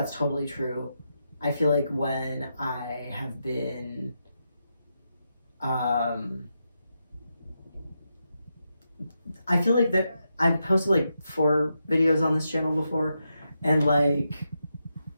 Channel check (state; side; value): inverted; both; correlation -0.85